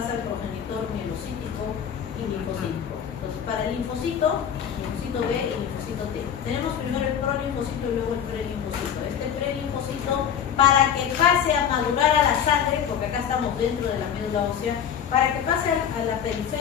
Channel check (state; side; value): quieter; right; 8.5 dB